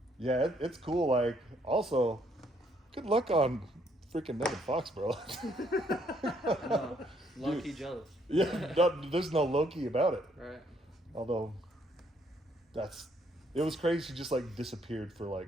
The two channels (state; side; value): normal; both; correlation 0.69